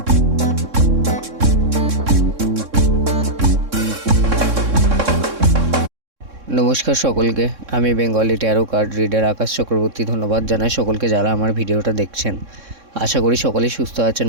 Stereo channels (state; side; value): late; left; 3.6 ms